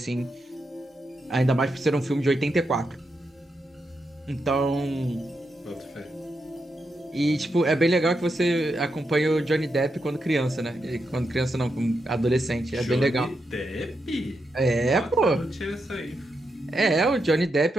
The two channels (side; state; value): both; normal; correlation 0.85